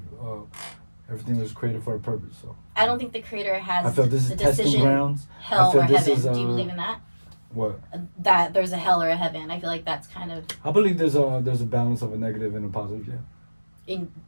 everything was created for a purpose. So I don't think the creator has I feel this the is testing decision, grounds. hell I feel or this heaven. is, Do you believe in that? What? That there's a hell or a heaven. I feel like that's kind of I believe there's a balance of a negative and a positive. Yeah.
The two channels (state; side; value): inverted; both; correlation -1.00